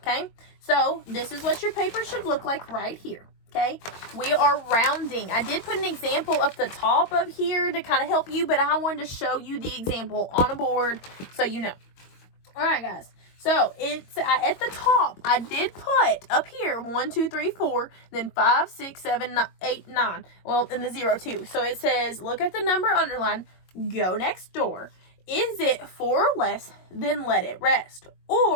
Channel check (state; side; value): late; right; 22 ms